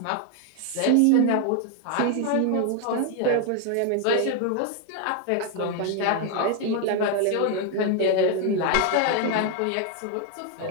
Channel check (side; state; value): both; different; correlation 0.00